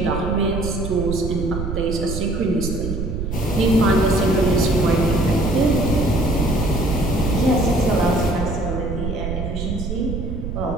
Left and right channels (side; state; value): right; noise; rumble, 4 dB below the sound